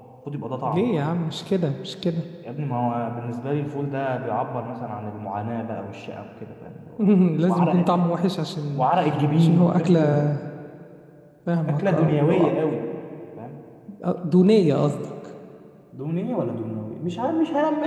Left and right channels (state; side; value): identical; both; correlation 1.00